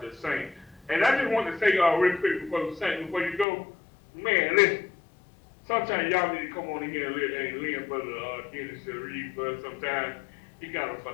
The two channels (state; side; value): drops out; right; at 3.5 s